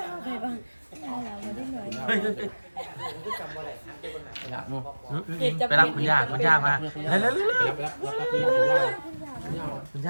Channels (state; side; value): inverted; both; correlation -1.00